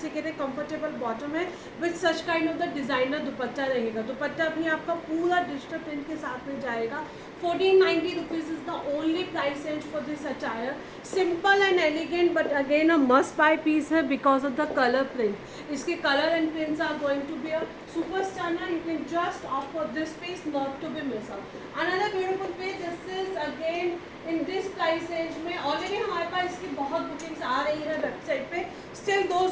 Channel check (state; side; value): identical; both; correlation 1.00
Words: कंफर्टेबल बॉटम है with such kind of the designer दुपट्टा रहेगा. दुपट्टा भी आपका पूरा डिजिटल प्रिंट के साथ में जाएगा. 1490 rupees is the only price range for this attire. Simple and elegant but again a must buy piece है because of the colour print. इसके colour and prints are going to be a super star. You can just opt for this piece, not to be miss out. Another beautiful piece, this is again in this price range में. Already हमारे पास इसकी बहुत bookings आ रही है website पे. Still